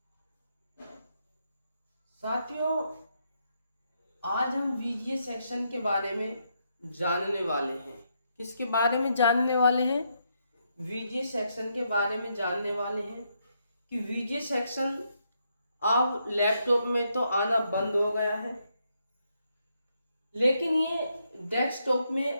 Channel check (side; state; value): both; inverted; correlation -0.78